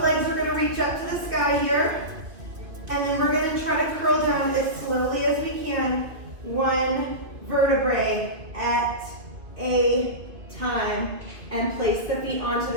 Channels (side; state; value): left; late; 2.5 ms